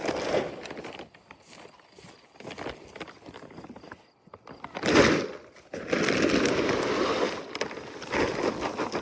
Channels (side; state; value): both; identical; correlation 1.00